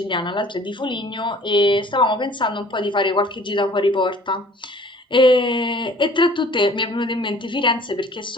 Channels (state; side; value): normal; both; correlation 0.52